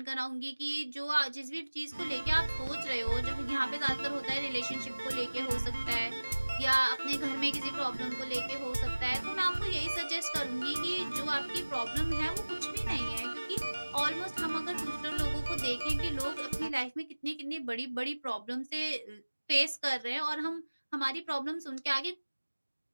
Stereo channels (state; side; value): inverted; both; correlation -1.00